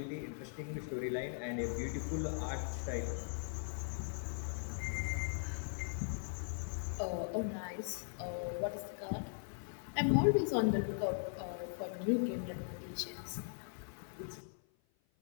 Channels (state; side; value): silent; right; 51 dB below the other